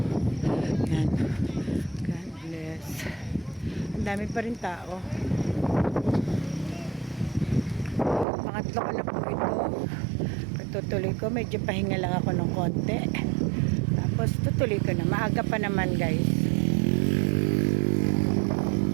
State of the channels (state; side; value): drops out; left; at 8.2 s